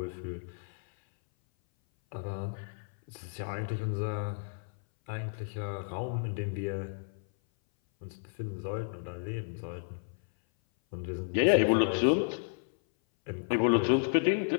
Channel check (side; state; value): right; silent; 56 dB below the other